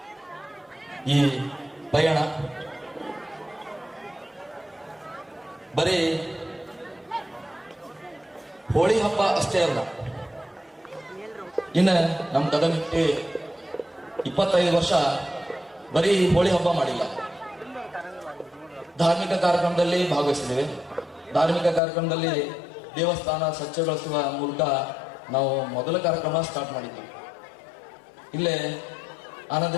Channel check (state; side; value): drops out; right; at 21.8 s